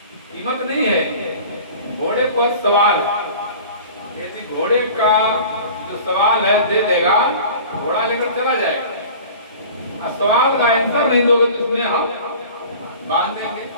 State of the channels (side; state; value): both; inverted; correlation -0.42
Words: कीमत नहीं है, घोड़े पर सवाल है। यदि घोड़े का जो सवाल है दे देगा, घोड़ा लेकर चला जाएगा, और सवाल का आंसर नहीं दोगे तो उसमें हम बांध देंगे।